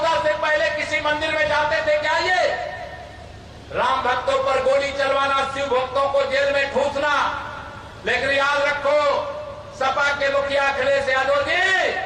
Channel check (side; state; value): both; identical; correlation 1.00